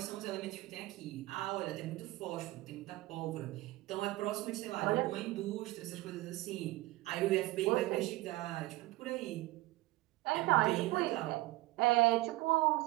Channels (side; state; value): left; quieter; 19.3 dB